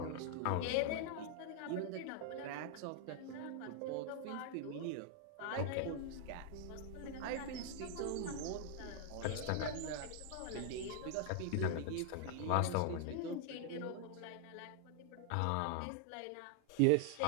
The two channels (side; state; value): both; different; correlation 0.00